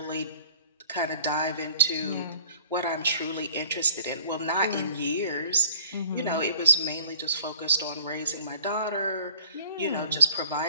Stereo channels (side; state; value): both; inverted; correlation -0.52